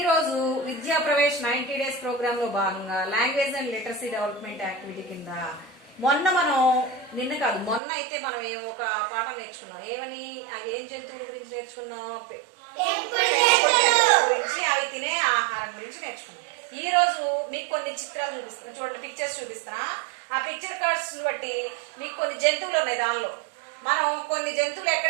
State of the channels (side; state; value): left; drops out; at 7.8 s